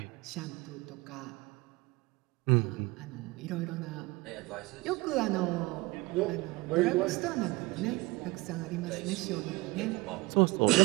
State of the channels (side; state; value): left; quieter; 22.8 dB